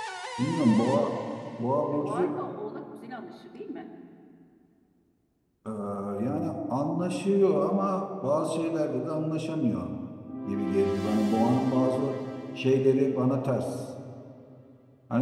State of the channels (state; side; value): identical; both; correlation 1.00